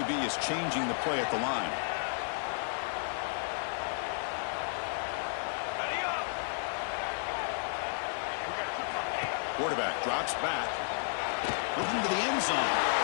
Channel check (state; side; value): silent; right; digital silence